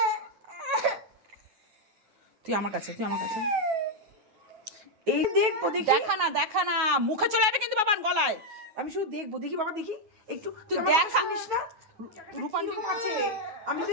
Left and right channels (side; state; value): left; late; 9.3 ms